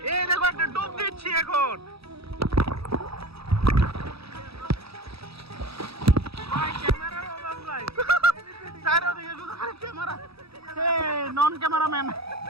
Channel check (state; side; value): late; left; 0.77 ms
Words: এই দেখো একটা ডুব দিচ্ছি এখন। সাইডে দিকে শুধু খালি ক্যামেরা নন ক্যামেরাম্যান